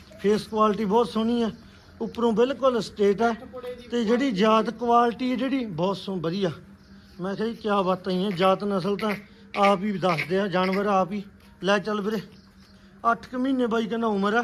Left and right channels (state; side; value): identical; both; correlation 1.00